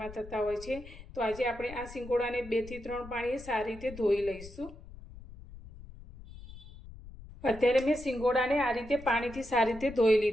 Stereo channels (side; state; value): left; noise; rumble, 16 dB below the sound